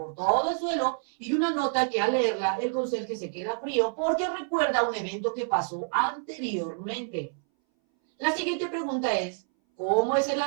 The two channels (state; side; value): silent; left; 60 dB below the other